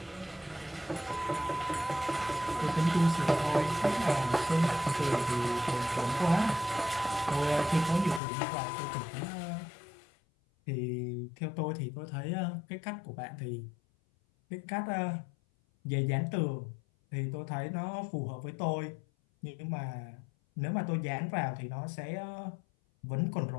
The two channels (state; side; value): drops out; right; at 8.2 s